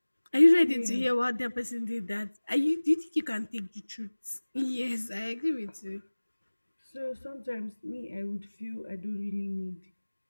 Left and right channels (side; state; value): both; inverted; correlation -1.00